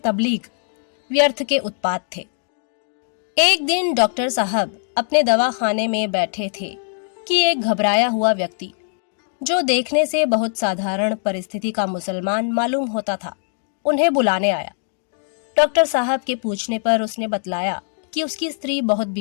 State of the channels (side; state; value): right; silent; digital silence